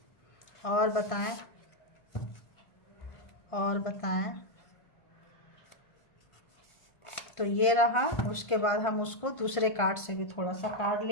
और बताएं, और बताएं। तो ये रहा, उसके बाद हम उसको दूसरे कार्ड से भी थोड़ा सा कार्ड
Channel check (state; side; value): late; right; 1.5 ms